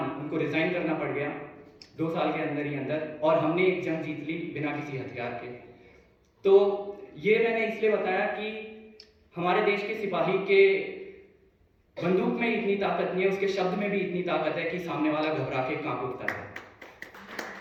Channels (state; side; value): identical; both; correlation 1.00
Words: उनको रिजाइन करना पड़ गया 2 साल के अंदर ही अंदर, और हमने एक जंग जीत ली बिना किसी हथियार के। तो ये मैंने इसलिए बताया कि हमारे देश के सिपाही के बंदूक में इतनी ताकत नहीं है, उसके शब्द में भी इतनी ताकत है कि सामने वाला घबरा के कांप उठता है।